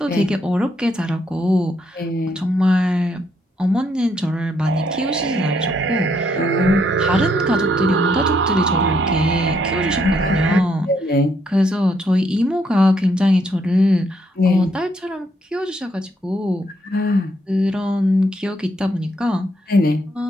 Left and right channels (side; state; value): both; normal; correlation 0.73